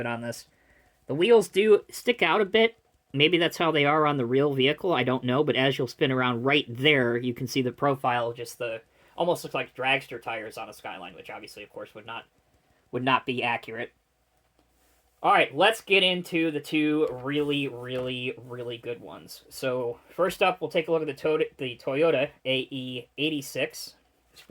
on this. The wheels do stick out a bit. Maybe that's how they are on the real vehicle. I don't know, but as you'll spin around right there, you can see the profile, just almost looks like dragster tires on a Skyline, which obviously, of course, would not be accurate. All right, let's get into the two really, really, really good ones. So first up, we'll take a look at the Toyota AE86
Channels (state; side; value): identical; both; correlation 1.00